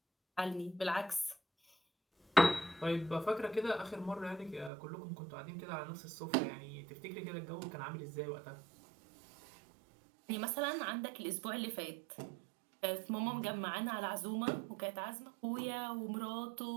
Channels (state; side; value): drops out; left; at 4.7 s